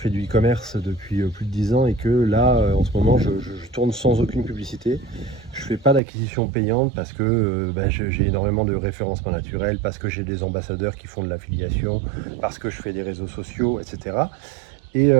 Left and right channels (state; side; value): drops out; left; at 6.0 s